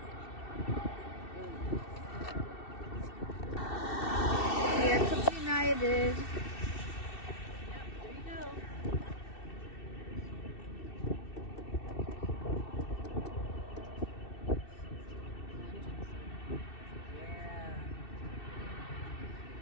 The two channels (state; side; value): late; right; 2.7 ms